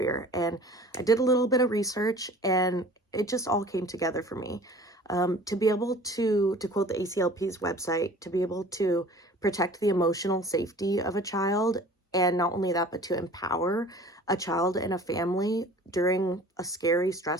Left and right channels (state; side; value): normal; both; correlation 0.46